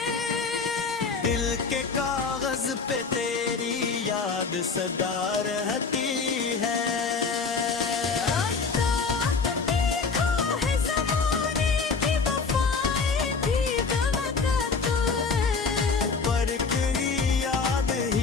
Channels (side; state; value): right; quieter; 4.8 dB